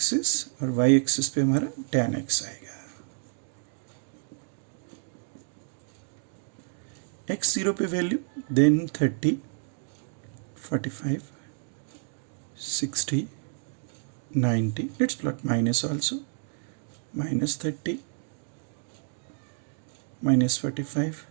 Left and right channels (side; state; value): left; silent; 55 dB below the other